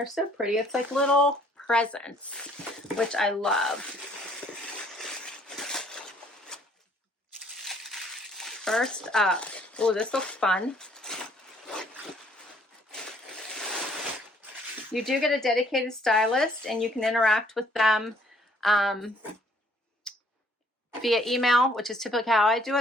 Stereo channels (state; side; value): normal; both; correlation 0.61